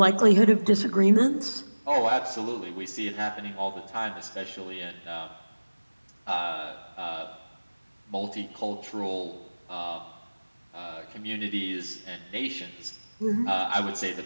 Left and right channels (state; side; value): inverted; both; correlation -1.00